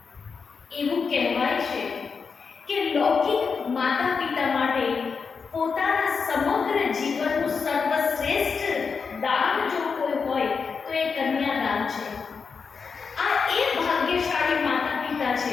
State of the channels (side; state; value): right; quieter; 5.4 dB